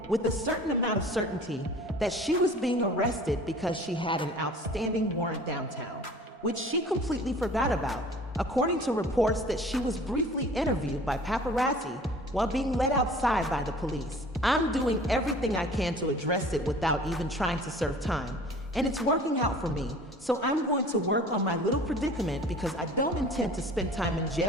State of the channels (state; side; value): normal; both; correlation 0.46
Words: with a certain amount of certainty, that she was being arrested because she had an outstanding warrant downtown, which she completely forgot about, according to reports that she was briefly interviewed by paparazzi while being led outside by the police. I'm doing everything I can to address it without even trying to serve time, and it's working out for me, so I'm going to work on my little predicament because I don't intend to spend time in